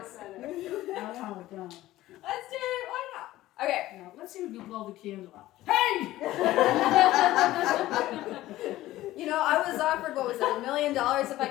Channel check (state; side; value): quieter; right; 15.8 dB